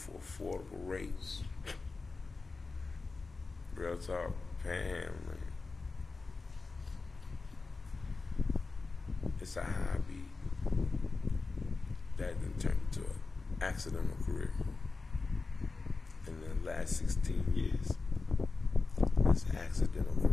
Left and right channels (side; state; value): right; quieter; 4.0 dB